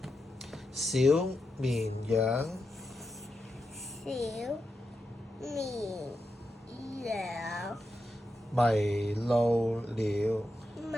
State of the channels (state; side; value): normal; both; correlation 0.87